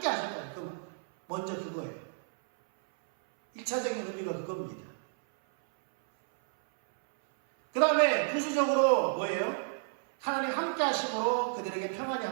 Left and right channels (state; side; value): silent; left; 57 dB below the other